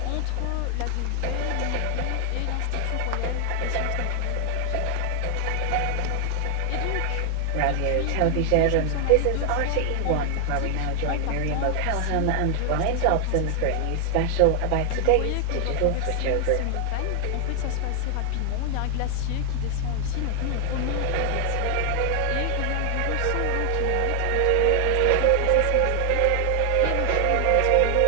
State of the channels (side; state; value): both; different; correlation 0.00